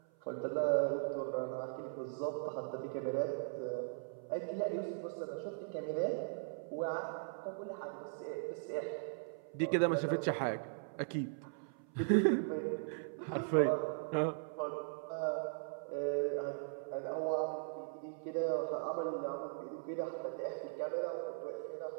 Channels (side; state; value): left; silent; 52 dB below the other